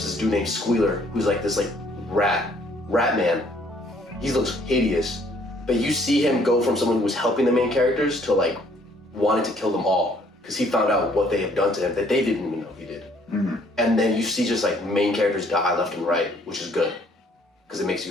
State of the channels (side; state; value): both; normal; correlation 0.62